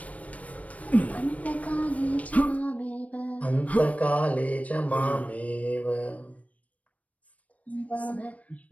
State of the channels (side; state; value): right; late; 0.067 ms